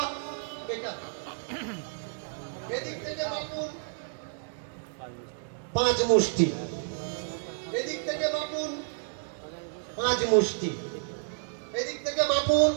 এটা। এদিক থেকে বাপুন 5 মুষ্টি, এদিক থেকে বাপুন 5 মুষ্টি, এদিক থেকে বাপুন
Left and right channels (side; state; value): left; silent; digital silence